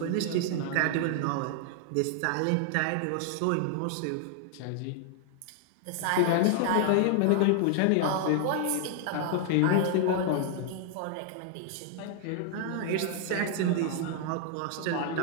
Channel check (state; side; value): different; both; correlation 0.00